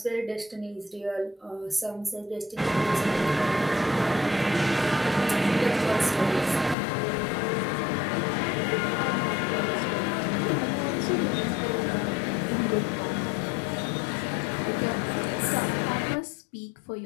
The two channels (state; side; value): drops out; right; at 6.8 s